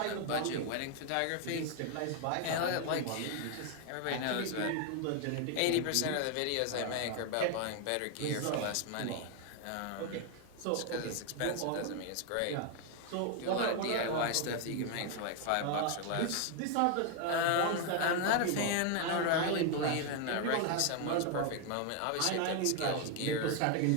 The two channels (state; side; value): different; both; correlation 0.01